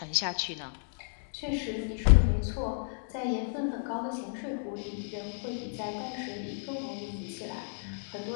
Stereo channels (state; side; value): silent; right; digital silence